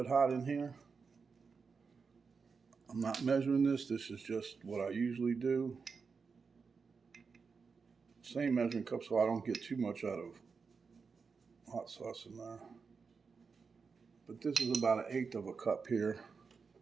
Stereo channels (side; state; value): left; quieter; 5.2 dB